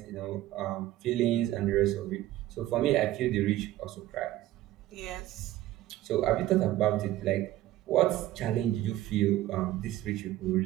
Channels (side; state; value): left; quieter; 14.9 dB